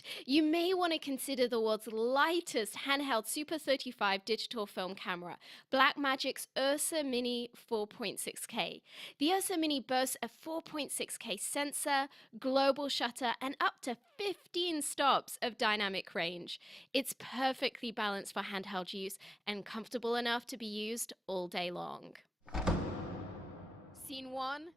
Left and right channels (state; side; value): normal; both; correlation 0.98